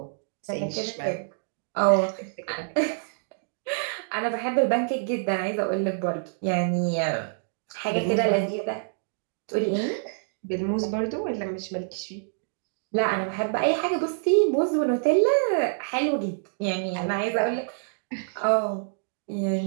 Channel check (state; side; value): silent; left; digital silence